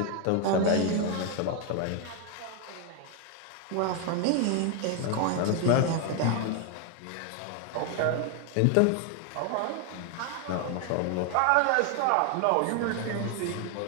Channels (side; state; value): both; different; correlation 0.01